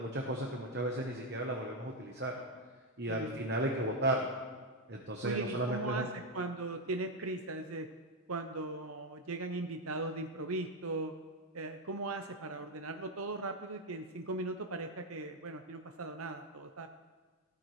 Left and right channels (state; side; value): normal; both; correlation 0.05